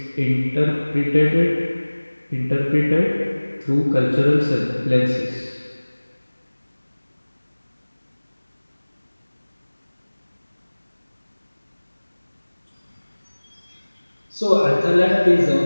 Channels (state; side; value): inverted; both; correlation -1.00